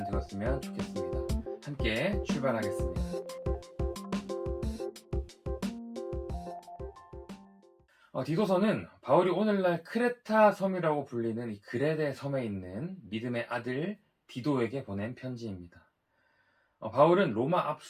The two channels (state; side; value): identical; both; correlation 1.00